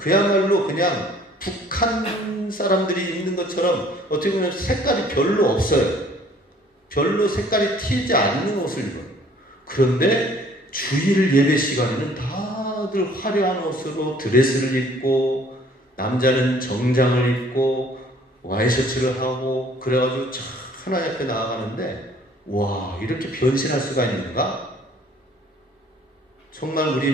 그냥 북한 사람들이 입는 것처럼 어떻게 보면 색깔이 별로 없어요. 별로 색깔이 튀지 않는 옷을 입어요. 그런데 주일 예배 시간에는 다들 화려한 옷으로 드레스를 입고 남자는 정장을 입고 와이셔츠를 하고 그래가지고 하나님 앞에 나아가는데 와, 이렇게 변신할 수가 있는가? 정말 우리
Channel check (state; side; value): normal; both; correlation 0.56